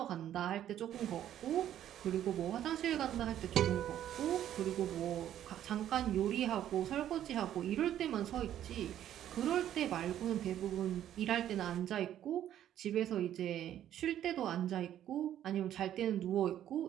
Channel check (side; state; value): left; quieter; 11.2 dB